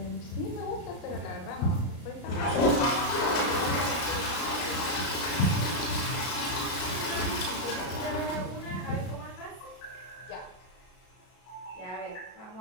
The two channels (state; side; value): late; right; 33 ms